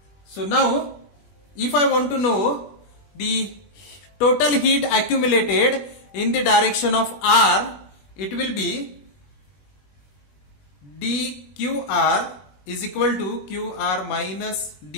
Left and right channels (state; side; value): late; right; 20 ms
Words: So now if I want to know the total heat accumulated in the direction of r, it will be dqr is equal to qr minus